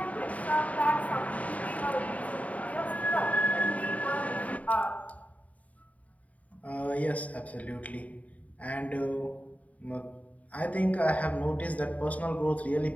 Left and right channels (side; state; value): right; late; 0.070 ms